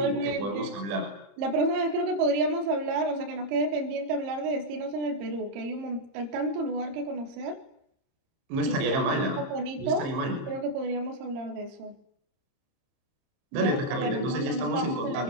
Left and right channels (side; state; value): left; late; 30 ms